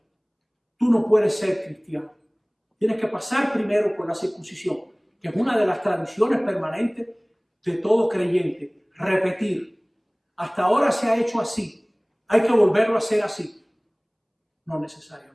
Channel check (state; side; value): identical; both; correlation 1.00